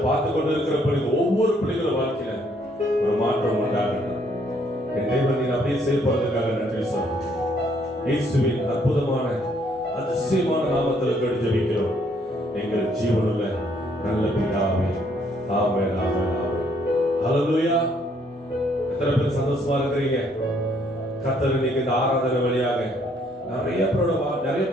பார்த்து கொண்டு இருக்கிற பிள்ளைகள் ஒவ்வொரு பிள்ளைகளும் வாழ்க்கையில ஒரு மாற்றம் உண்டாகட்டும். என் தெய்வம் நீ அப்படியே செயல்படுறதுக்காக நன்றி சொல்றேன். இயேசுவின் அற்புதமான அதிசயமான நாமத்தில் கேட்டு ஜெபிக்கிறோம் எங்கள் ஜீவனுள்ள நல்ல பிதாவே. ஆமென், ஆமென், ஆமென். ஹல்லேலூயா. எத்தனை பேர் சந்தோஷமா இருக்கிறீங்க? கர்த்தர் இன்னைக்கு இந்த ஆராதனை வழியாக நிறைய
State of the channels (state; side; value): normal; both; correlation 0.67